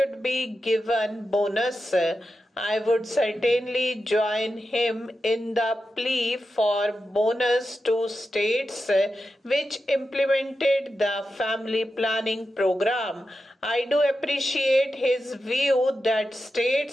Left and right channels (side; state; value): both; normal; correlation 0.90